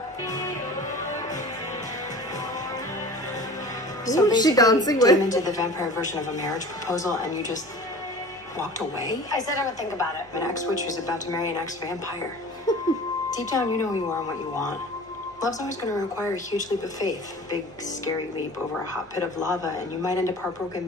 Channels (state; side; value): normal; both; correlation 0.40